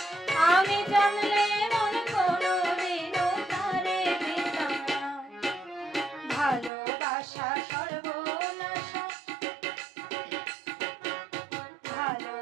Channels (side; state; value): left; drops out; at 6.7 s